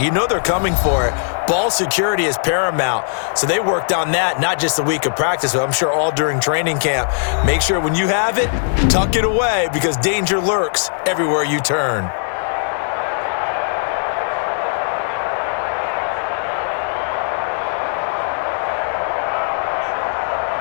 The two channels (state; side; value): silent; right; 61 dB below the other